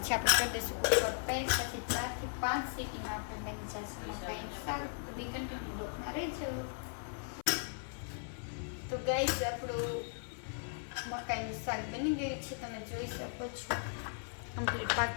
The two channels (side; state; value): right; silent; 53 dB below the other